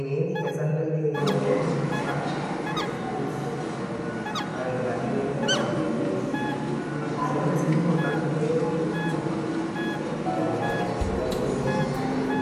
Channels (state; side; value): identical; both; correlation 1.00